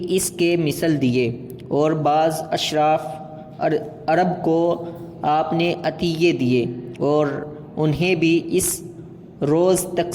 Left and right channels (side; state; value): both; identical; correlation 1.00